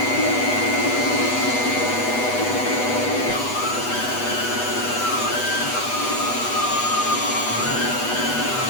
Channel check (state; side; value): late; right; 8.2 ms